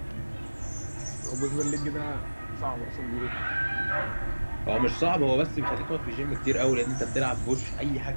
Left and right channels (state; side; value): inverted; both; correlation -1.00